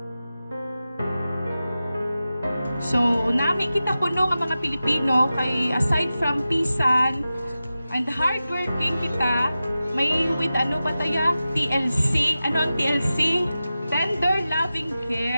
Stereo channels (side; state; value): both; inverted; correlation -0.94